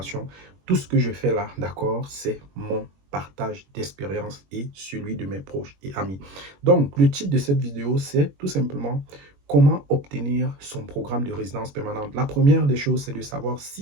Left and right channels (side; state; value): left; late; 21 ms